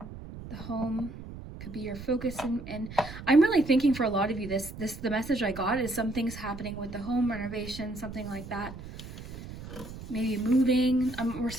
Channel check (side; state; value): right; noise; rumble, 12 dB below the sound